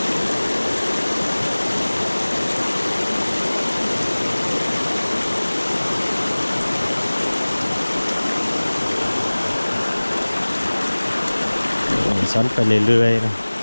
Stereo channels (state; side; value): inverted; both; correlation -1.00